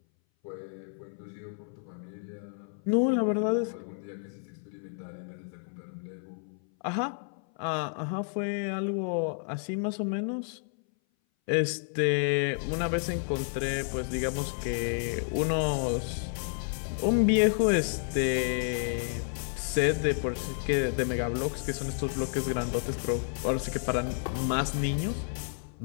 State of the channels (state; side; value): silent; right; 57 dB below the other